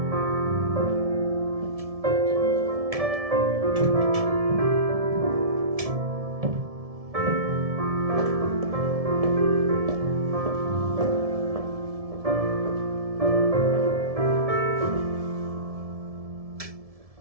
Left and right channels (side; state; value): left; late; 1.7 ms